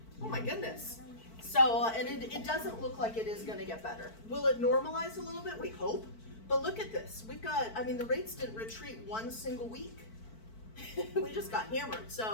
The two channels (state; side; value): late; right; 4.5 ms